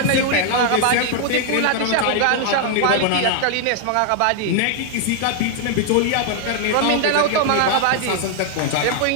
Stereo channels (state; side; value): different; both; correlation 0.00